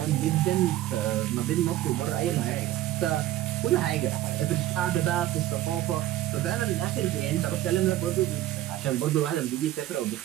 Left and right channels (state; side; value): quieter; left; 14.4 dB